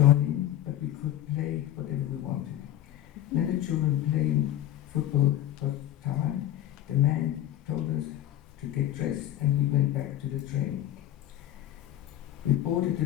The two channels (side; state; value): right; quieter; 12.5 dB